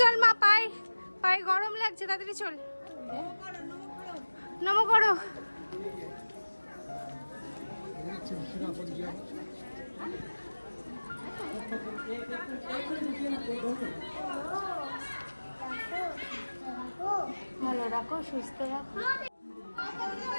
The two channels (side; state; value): both; inverted; correlation -1.00